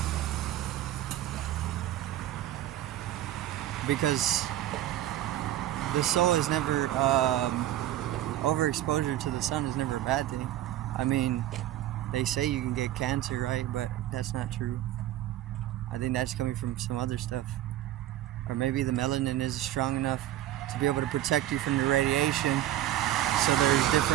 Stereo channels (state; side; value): quieter; left; 13.4 dB